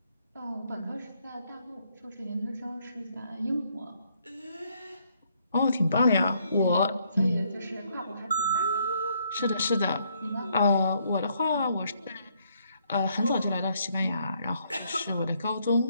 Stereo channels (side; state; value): both; inverted; correlation -0.70